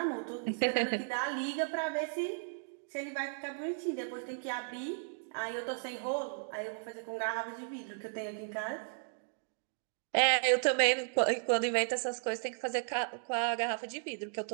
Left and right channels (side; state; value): left; silent; digital silence